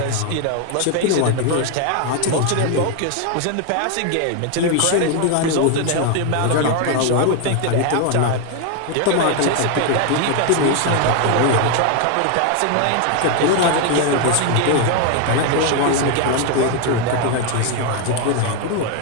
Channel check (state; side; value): different; both; correlation 0.01